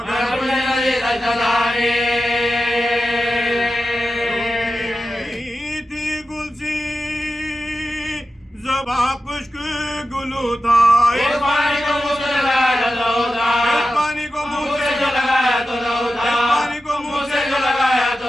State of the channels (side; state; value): both; normal; correlation 0.92